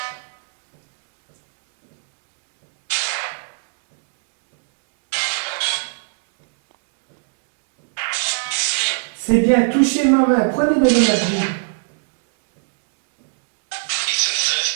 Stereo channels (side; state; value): left; silent; digital silence